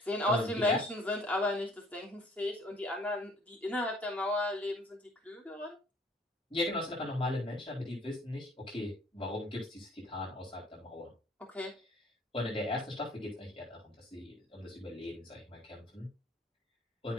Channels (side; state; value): both; normal; correlation 0.56